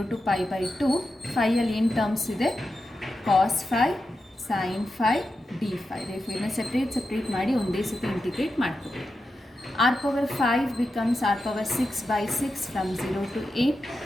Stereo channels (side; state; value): both; normal; correlation 0.90